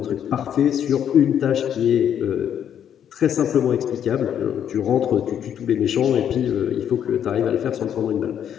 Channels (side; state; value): right; quieter; 9.3 dB